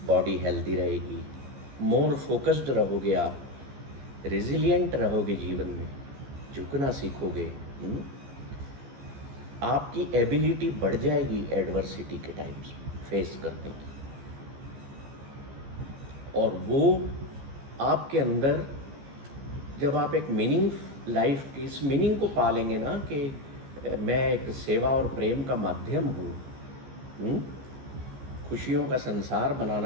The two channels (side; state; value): left; late; 14 ms